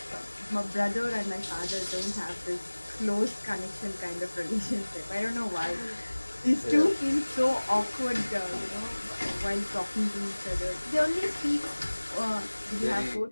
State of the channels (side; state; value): both; inverted; correlation -1.00